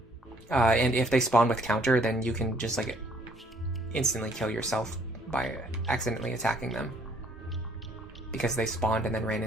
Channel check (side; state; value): both; normal; correlation 0.62